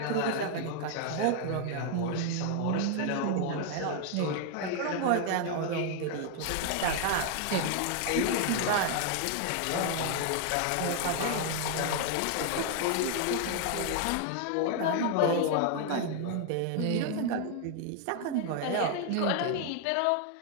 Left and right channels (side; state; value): both; different; correlation 0.00